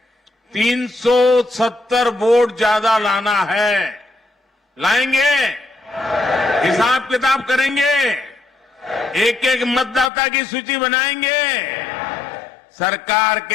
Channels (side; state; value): right; drops out; at 10.1 s